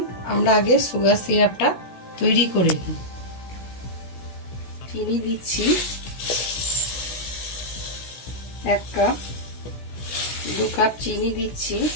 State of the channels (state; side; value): late; right; 16 ms